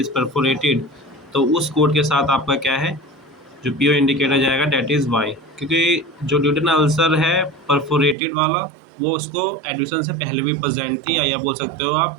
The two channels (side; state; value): left; drops out; at 8.2 s